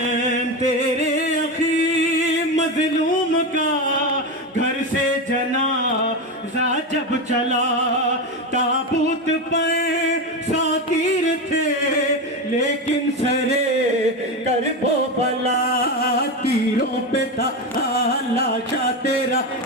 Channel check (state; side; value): normal; both; correlation 0.16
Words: تیرے اخی مظلوم کا گھر سے جنازہ جب چلا تابوت پر 100 تیر تھے لیکن سرے کرب و بلا تیروں پہ تھا لاشا تیرا